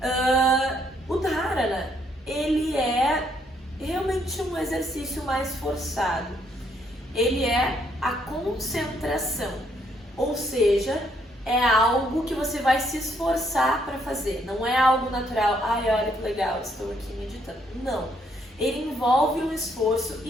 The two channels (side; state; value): both; normal; correlation 0.71